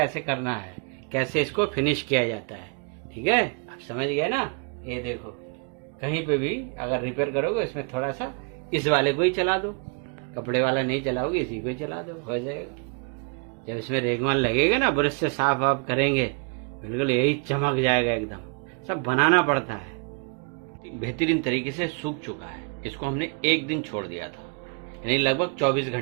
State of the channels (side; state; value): left; quieter; 36.4 dB